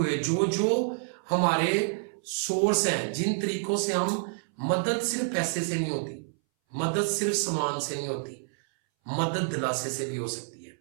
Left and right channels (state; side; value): silent; left; 59 dB below the other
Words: جو ہمارے سورس ہیں، جن طریقوں سے ہم مدد صرف پیسے سے نہیں ہوتی، مدد صرف سامان سے نہیں ہوتی، مدد دلاسے سے بھی ہو سکتی ہے،